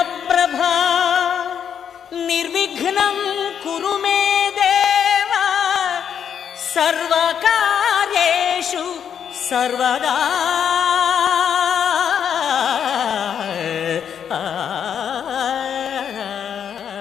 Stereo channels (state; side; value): quieter; right; 8.2 dB